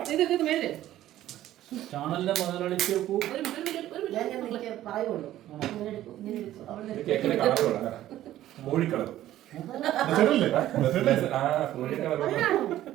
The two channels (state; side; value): quieter; left; 13.6 dB